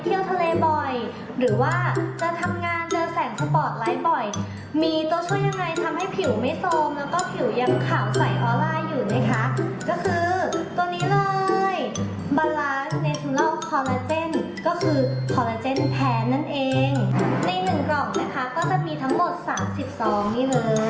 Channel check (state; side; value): identical; both; correlation 1.00